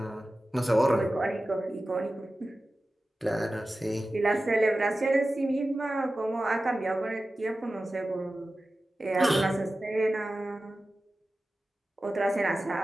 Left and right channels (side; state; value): both; normal; correlation 0.95